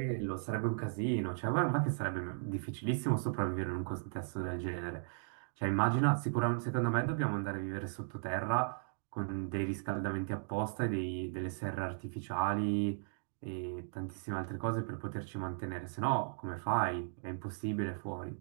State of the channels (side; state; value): left; silent; digital silence